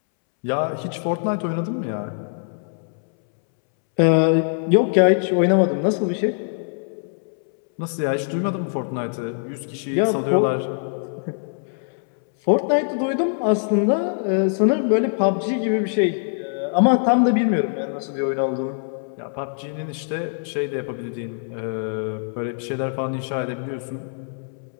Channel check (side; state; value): right; silent; 64 dB below the other